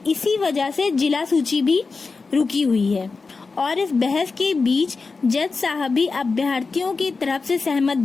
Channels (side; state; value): right; quieter; 4.3 dB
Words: इसी वजह से जिला सूची भी रुकी हुई है। और इस बहस के बीच जज साहब भी अभ्यर्थियों की तरफ से सहमत